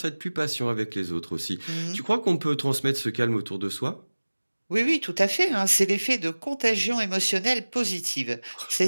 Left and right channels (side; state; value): both; inverted; correlation -1.00